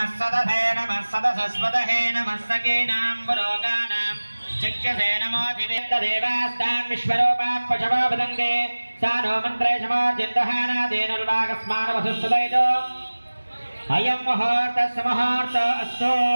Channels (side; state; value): both; inverted; correlation -1.00